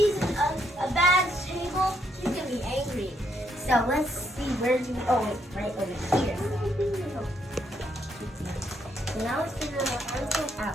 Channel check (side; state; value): both; normal; correlation 0.74